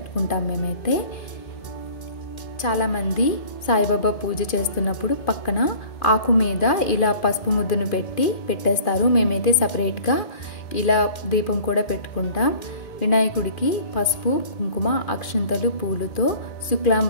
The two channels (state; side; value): late; right; 2.4 ms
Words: మేమైతే చాలామంది సాయిబాబా పూజ చేస్తున్నప్పుడు పక్కన ఆకు మీద ఇలా పసుపు ముద్దను పెట్టేస్తారు. మేమైతే సపరేట్గా ఇలా దీపం కూడా పెట్టుకుంటాం. వినాయకుడికి పసుపు, కుంకుమ, అక్షంతలు, పూలతో